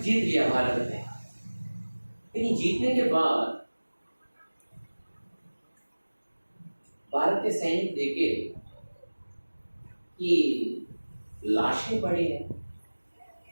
जीत लिया भारत ने। लेकिन जीतने के बाद भारत के सैनिक देखे कि लाशें पड़ी हैं,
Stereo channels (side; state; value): both; inverted; correlation -1.00